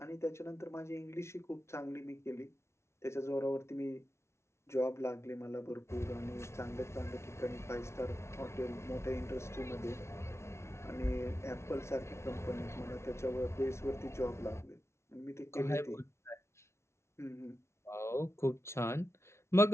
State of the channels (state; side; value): late; right; 0.13 ms